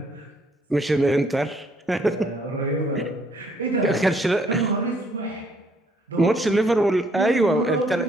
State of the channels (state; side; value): normal; both; correlation 0.66